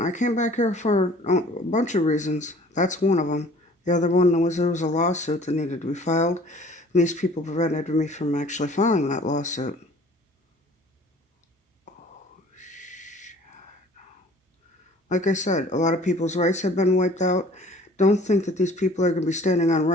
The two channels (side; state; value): both; normal; correlation 0.51